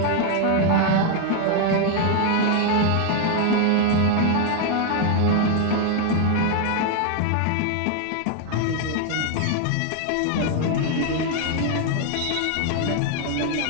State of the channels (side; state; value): both; different; correlation 0.00